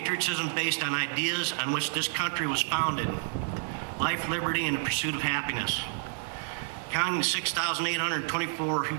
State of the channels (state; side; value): silent; left; 58 dB below the other